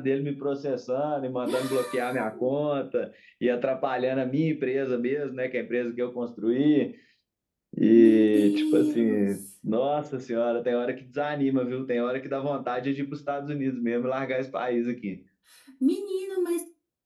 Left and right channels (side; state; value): both; identical; correlation 1.00